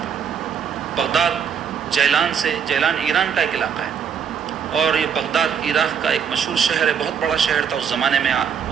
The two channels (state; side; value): quieter; left; 7.4 dB